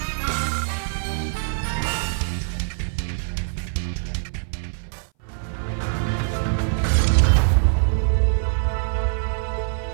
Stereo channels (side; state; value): left; silent; 59 dB below the other